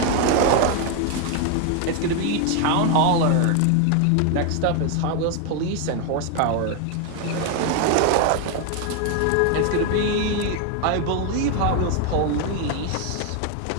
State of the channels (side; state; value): both; different; correlation 0.01